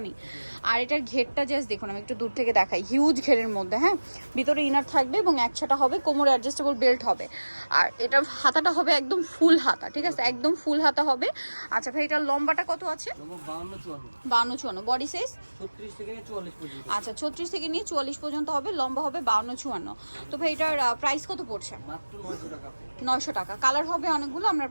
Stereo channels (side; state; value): both; inverted; correlation -1.00